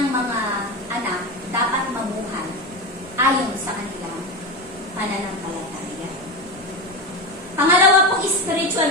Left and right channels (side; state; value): both; normal; correlation 0.19